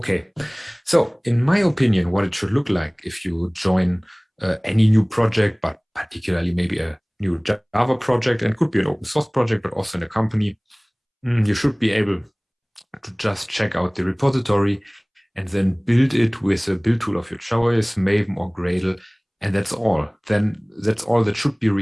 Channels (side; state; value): both; identical; correlation 1.00